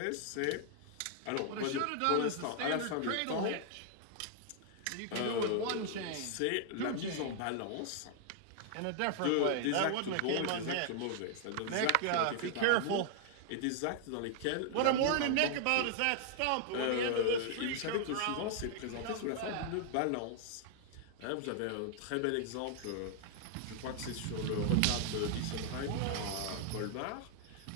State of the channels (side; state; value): both; different; correlation -0.01